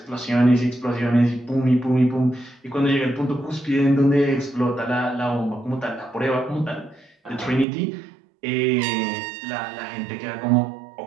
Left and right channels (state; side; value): drops out; left; at 7.7 s